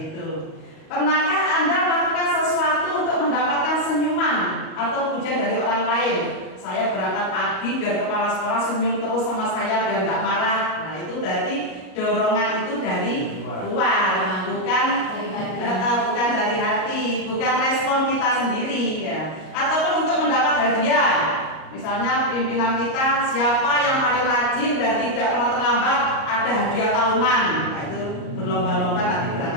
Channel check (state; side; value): late; right; 38 ms